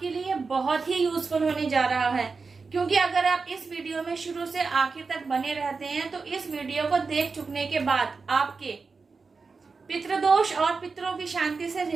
लिए बहुत ही यूजफुल होने जा रहा है, क्योंकि अगर आप इस वीडियो में शुरू से आखिर तक बने रहते हैं तो इस वीडियो को देख चुकने के बाद आपके पितृदोष और पितरों की शांति से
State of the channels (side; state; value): left; quieter; 4.6 dB